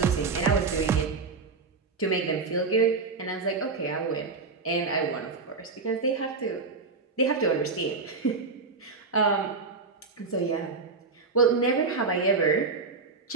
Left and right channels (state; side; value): quieter; left; 4.3 dB